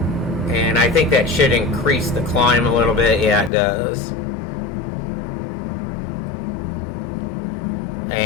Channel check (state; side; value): drops out; right; at 3.5 s